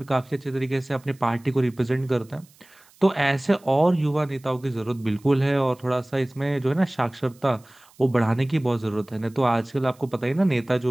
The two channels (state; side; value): noise; right; hiss, 29 dB below the sound